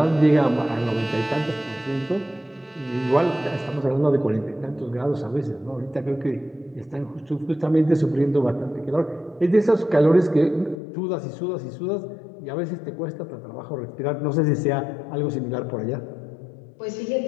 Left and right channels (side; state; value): right; drops out; at 10.8 s